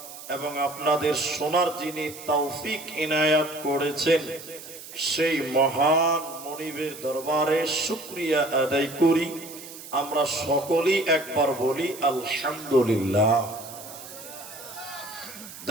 এবং আপনাদের শোনার যিনি তৌফিক ইনায়াত করেছেন, সেই মহান মনিবের দরবারে শুকরিয়া আদায় করি। আমরা সকলেই একবার বলি আলহামদুলিল্লাহ।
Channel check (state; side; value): noise; right; hiss, 14 dB below the sound